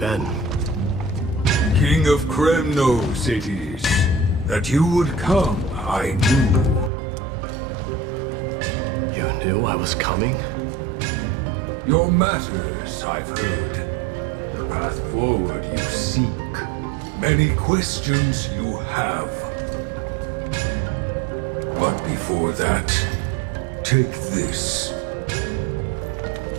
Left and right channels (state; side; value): drops out; left; at 6.9 s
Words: King of Kremnos it is. That you would come, I knew. You knew I was coming? Your matters, I've heard. The path forward you seek. Many questions you have. But before that, take this.